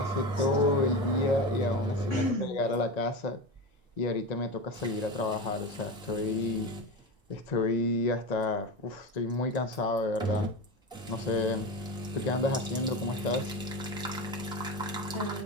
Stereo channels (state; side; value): normal; both; correlation 0.23